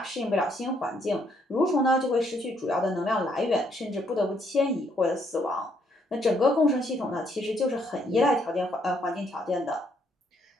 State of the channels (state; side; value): normal; both; correlation 0.71